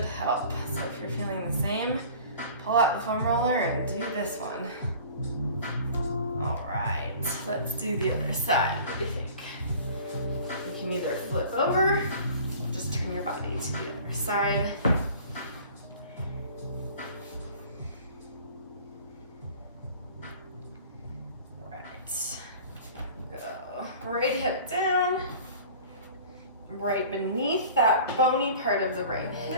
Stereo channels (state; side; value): inverted; both; correlation -0.45